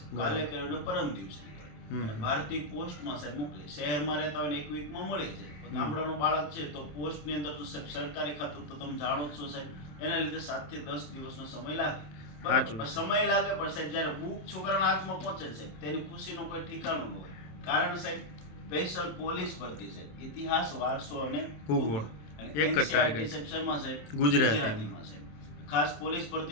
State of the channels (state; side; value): late; right; 27 ms